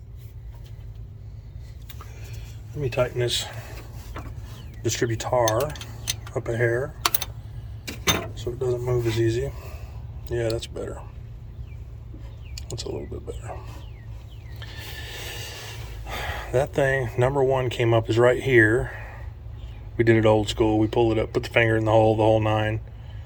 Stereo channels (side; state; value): both; identical; correlation 1.00